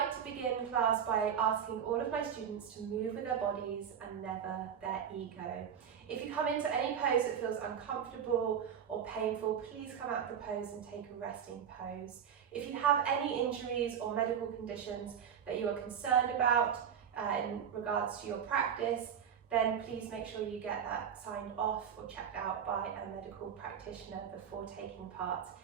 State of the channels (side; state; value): left; quieter; 8.1 dB